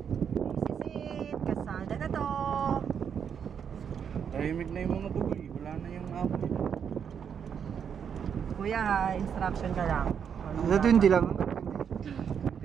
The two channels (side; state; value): left; quieter; 7.6 dB